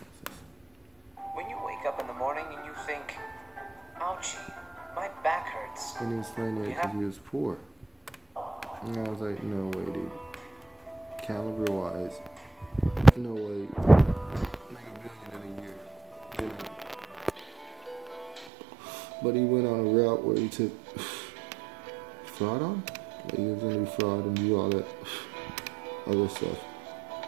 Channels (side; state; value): left; drops out; at 18.5 s